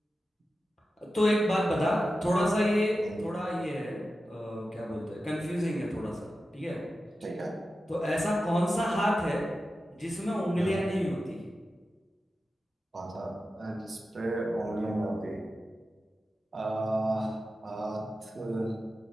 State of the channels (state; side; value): normal; both; correlation 0.92